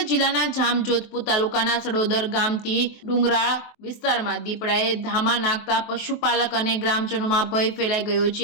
જિલ્લાના જામજોધપુર તાલુકાના સડોદર ગામથી ડુંગરાળ વિસ્તારમાં દીપડાએ ધામા નાખતા પશુપાલક અને ગ્રામજનોમાં ભય ફેલાઈ ગયો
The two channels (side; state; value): right; late; 24 ms